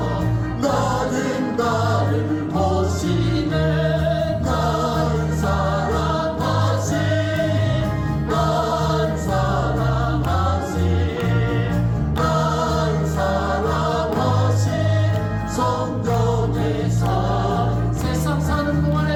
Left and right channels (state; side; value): identical; both; correlation 1.00